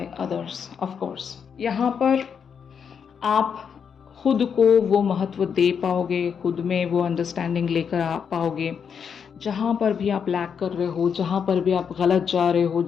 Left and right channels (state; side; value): quieter; right; 7.0 dB